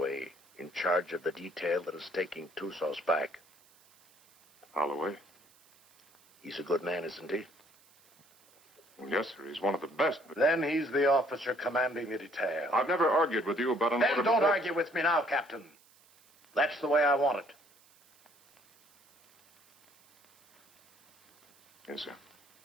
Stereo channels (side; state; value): right; noise; hiss, 30 dB below the sound